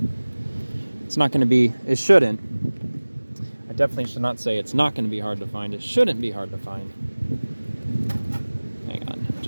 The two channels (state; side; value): inverted; both; correlation -1.00